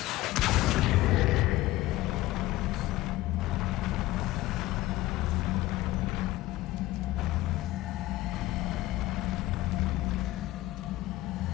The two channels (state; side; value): quieter; right; 17.1 dB